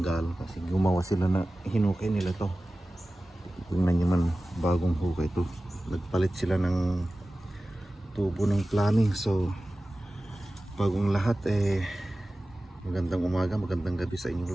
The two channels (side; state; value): both; normal; correlation 0.96